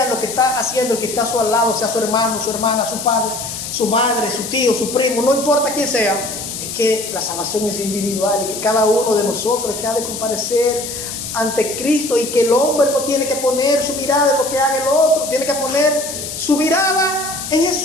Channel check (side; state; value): left; noise; hiss, 7 dB below the sound